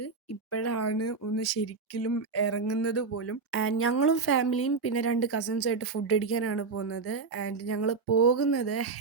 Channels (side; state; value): left; quieter; 4.6 dB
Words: ഇപ്പോഴാണ് ഒന്ന് ശരിക്കും ഇറങ്ങുന്നത് പോലും. ആൻഡ് ഞങ്ങളും ഫാമിലിയും പിന്നെ 2 കസിൻസുമായിട്ട് ഫുഡ് അടിക്കാനാണ് പോകുന്നത്. ആൻഡ് ഞങ്ങൾ പോകുന്നത്